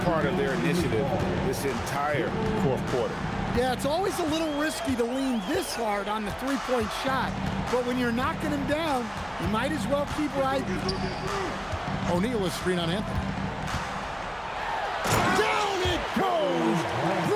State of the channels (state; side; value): identical; both; correlation 1.00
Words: part of their initiative this entire fourth quarter. Yeah, it's always a little risky to lean this hard on the three-point shot, but when you're knocking him down, you might as well keep riding. O'Neal is screen on Anthony. Down it goes!